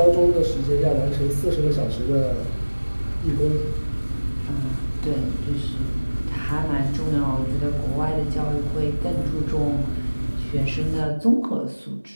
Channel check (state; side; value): inverted; both; correlation -1.00